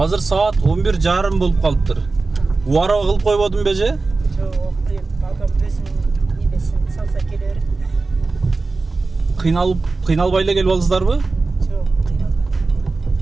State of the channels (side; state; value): left; quieter; 3.7 dB